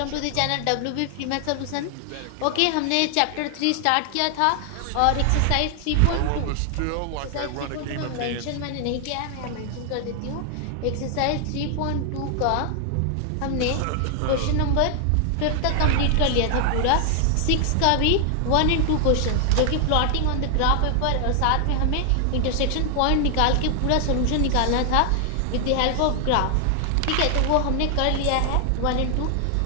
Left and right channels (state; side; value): different; both; correlation 0.00